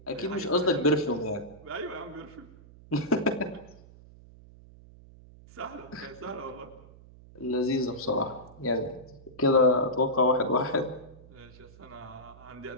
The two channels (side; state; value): right; noise; hum, 21 dB below the sound